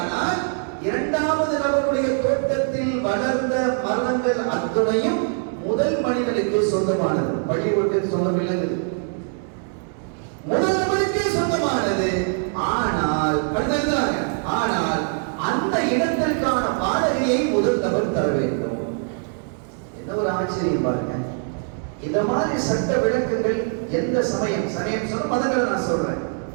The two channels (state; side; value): silent; left; 55 dB below the other